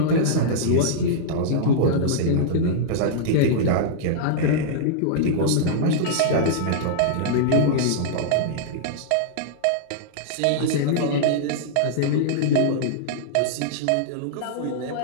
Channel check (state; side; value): different; both; correlation -0.02